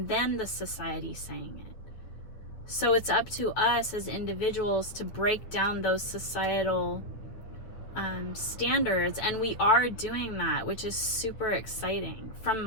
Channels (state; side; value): late; right; 9.4 ms